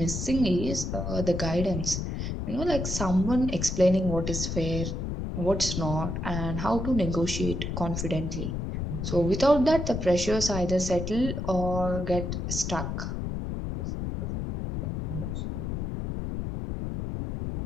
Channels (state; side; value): noise; left; rumble, 3 dB below the sound